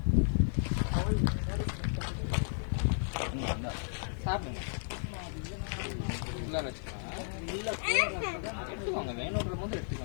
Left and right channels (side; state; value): right; silent; digital silence